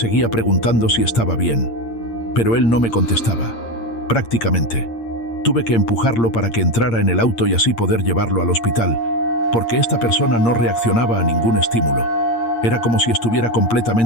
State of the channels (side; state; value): right; late; 8.7 ms